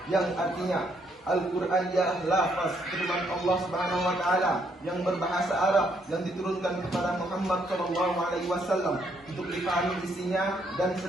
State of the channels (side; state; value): both; normal; correlation 0.72